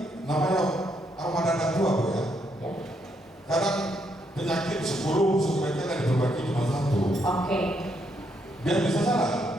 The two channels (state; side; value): normal; both; correlation 0.75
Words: namanya armada anak tua Bu ya. Ya. Kadang penyakit 10 sebaiknya diperbaiki cuma 1. Oke. Biar bisa jalan.